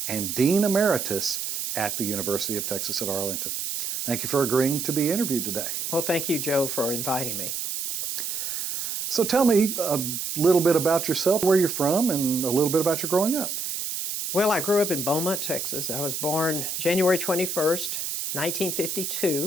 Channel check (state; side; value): noise; right; hiss, 4 dB below the sound